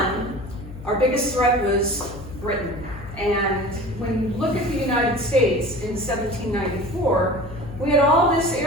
our biggest threat was Britain. And when you look at the United States in 1794, we had all this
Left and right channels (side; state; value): left; noise; hum, 14 dB below the sound